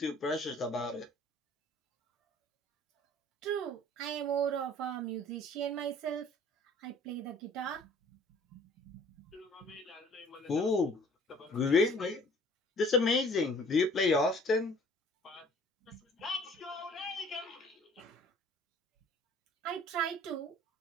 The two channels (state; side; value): normal; both; correlation 0.53